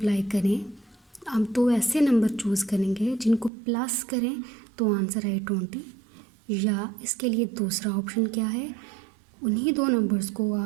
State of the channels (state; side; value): drops out; left; at 3.5 s